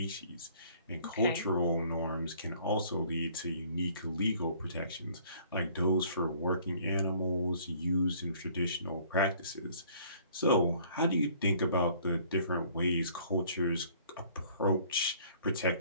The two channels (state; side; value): inverted; both; correlation -0.56